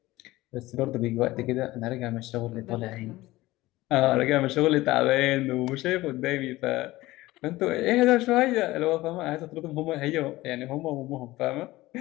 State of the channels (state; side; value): quieter; right; 18.3 dB